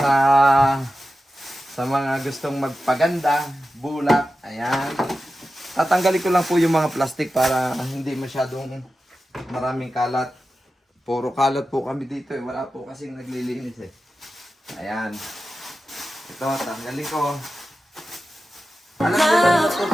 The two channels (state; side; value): normal; both; correlation 0.93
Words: mga gustong magpaganda. Bulak. Ayan. Tatanggalin ko lang po yung mga plastic para hindi masyadong maraming kalat. Puro kalat po kami dito eh. Wala po kasing naglilinis eh. Ayan. Ito, tanggalin ko. Alam ko lang ito.